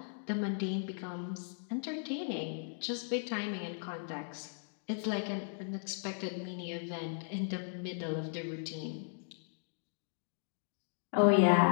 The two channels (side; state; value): right; silent; digital silence